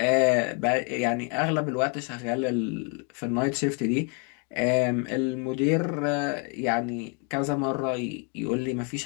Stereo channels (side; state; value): right; quieter; 36.0 dB